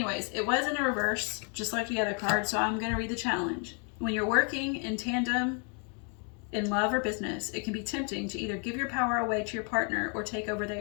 it was in a reverse, just like the other card, so I'm going to read the challenge. When you're working in tandem in love or business, it can be tempting to either give your power away to your partner or take over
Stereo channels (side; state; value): right; quieter; 38.8 dB